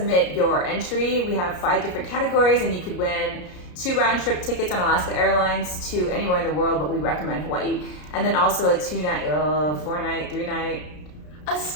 your entry. We have 5 different categories, and you could win 2 round-trip tickets on Alaska Airlines to anywhere in the world, but we recommend Hawaii. And then also a 2-night, 4-night, 3-night, a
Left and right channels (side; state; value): right; late; 33 ms